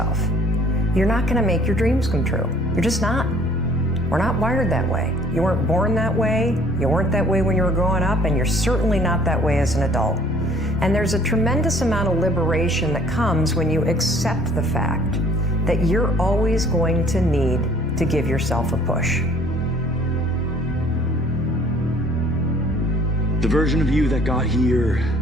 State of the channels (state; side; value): normal; both; correlation 0.56